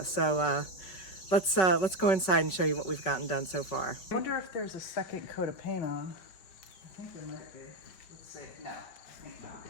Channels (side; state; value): right; late; 5.3 ms